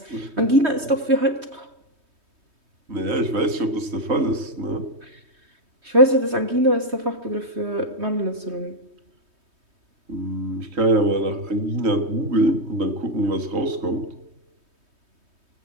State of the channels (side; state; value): left; late; 3.2 ms